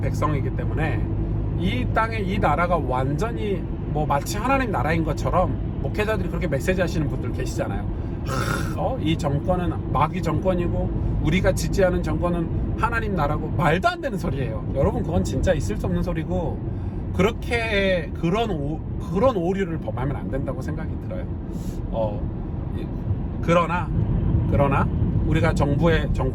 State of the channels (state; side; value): identical; both; correlation 1.00